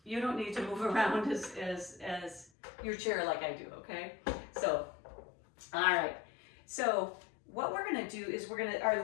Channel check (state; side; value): drops out; right; at 2.5 s